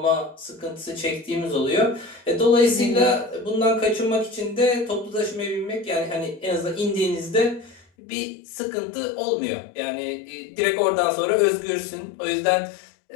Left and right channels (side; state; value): right; drops out; at 7.9 s